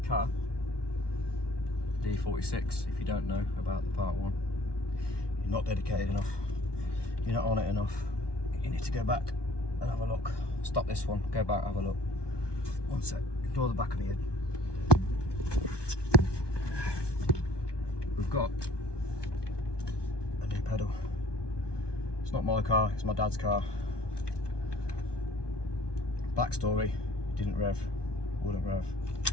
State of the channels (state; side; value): late; right; 1.2 ms